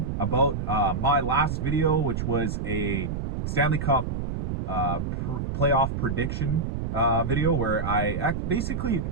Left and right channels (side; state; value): right; noise; rumble, 3 dB below the sound